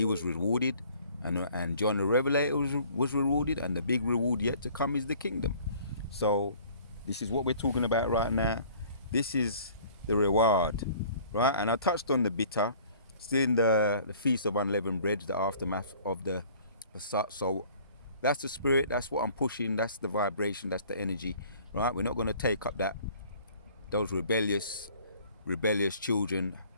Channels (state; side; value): inverted; both; correlation -0.53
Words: was rewarded, and John the Revelator was rewarded, and the big reward yet to come is the kingdom. So this is what we're talking about right now. This is the reward, right? And I touched on the bitter, still in the Feast of Unleavened Bread, the aftermath of the so that's the spirit, that's what I'm pushing, that's the vibration, that's the energy, right? We're not going to take up those rebellious children,